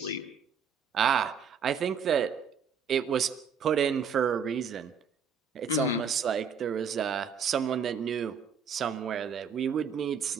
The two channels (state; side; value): quieter; left; 6.4 dB